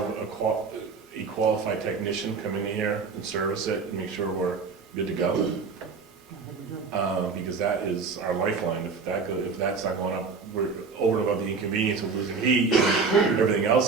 a qualified technician come in here and service it and make sure we're good to go. Because that is our lifeline. If that's not going up, we're over and above the inconvenience of losing heat and everything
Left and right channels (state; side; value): quieter; left; 4.9 dB